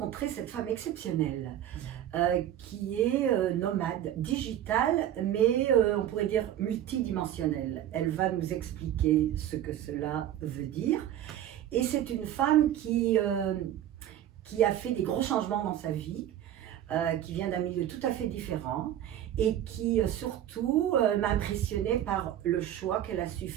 cette femme exceptionnelle qui est nomade, digitale, mais on pourrait dire multidimensionnelle. Elle va nous expliquer ce que cela veut dire. Et c'est une femme qui a fait des gros changements dans sa vie, qui vient d'un milieu tout à fait différent et qui surtout m'a impressionnée par le choix qu'elle a su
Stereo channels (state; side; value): quieter; left; 11.4 dB